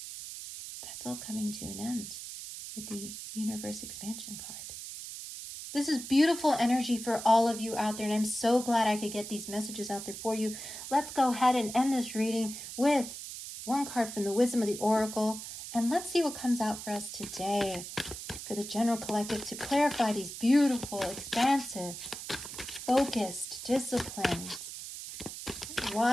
that's all coming to an end with the universe expansion card. This is beautiful energy for all of you out there, and I'm so glad I could get these messages out there for you. Let's go ahead and end this reading with one card from the Wisdom of the Oracle, and let's see what comes out for us today for the general collective to clarify these beautiful, expansive, focused, disciplined,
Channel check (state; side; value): noise; right; hiss, 9 dB below the sound